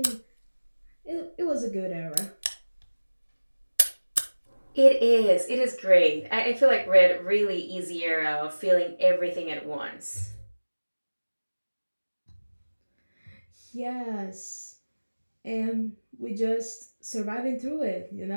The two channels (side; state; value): both; inverted; correlation -1.00